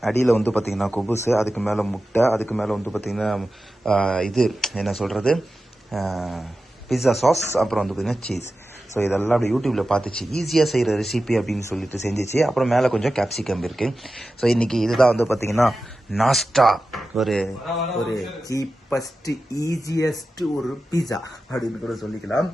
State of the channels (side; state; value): both; normal; correlation 0.93